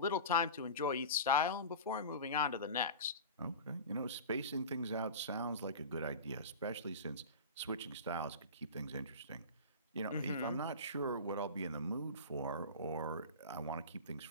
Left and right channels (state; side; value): inverted; both; correlation -0.31